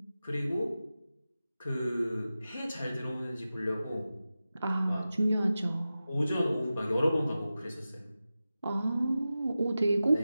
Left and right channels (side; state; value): both; inverted; correlation -0.94